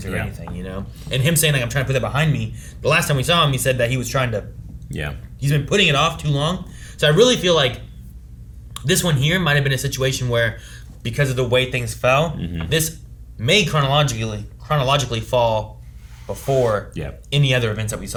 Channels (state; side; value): identical; both; correlation 1.00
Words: or anything, you know? And him saying, like, I'm trying to put that behind me. The last time we saw him, he said that he was trying to... Yeah. He's been putting it off too long. So I really feel like this one here might have been a situation where, because of the way things fell, this may chronologically fall before any other events that we